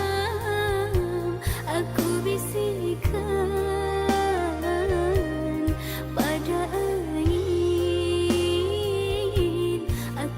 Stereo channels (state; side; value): identical; both; correlation 1.00